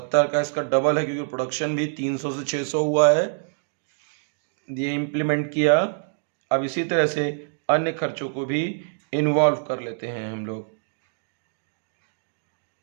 का इसका डबल है, क्योंकि प्रोडक्शन भी 300 से 600 हुआ है, ये इम्प्लीमेंट किया। अब इसी तरह से अन्य खर्चों को भी इन्वॉल्व कर लेते हैं हम लोग।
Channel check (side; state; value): left; silent; digital silence